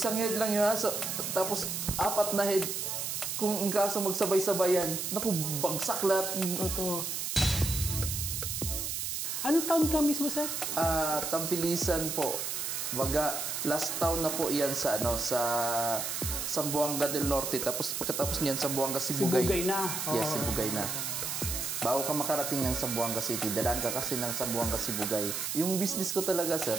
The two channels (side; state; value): right; noise; hiss, 3 dB below the sound